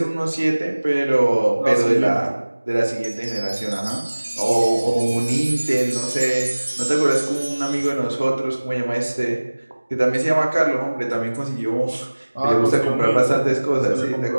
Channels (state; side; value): inverted; both; correlation -1.00